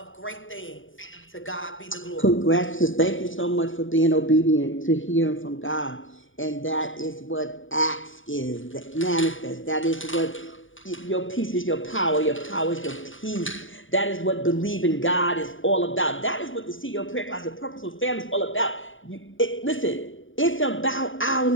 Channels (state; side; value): late; right; 0.57 ms